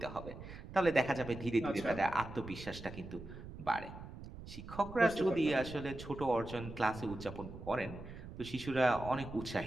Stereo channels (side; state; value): right; noise; rumble, 13 dB below the sound